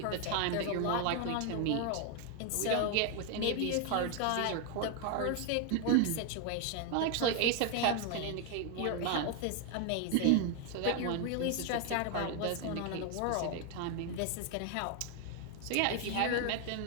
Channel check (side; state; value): both; different; correlation 0.01